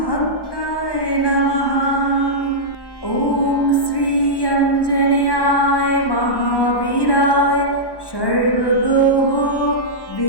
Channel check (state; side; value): late; right; 1.1 ms